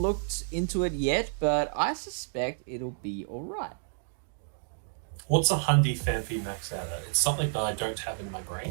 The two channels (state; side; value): silent; left; digital silence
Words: into it yet, but I suspect it'll be alright. What's a Hundy Phanpy max out at? It's something that I don't have in my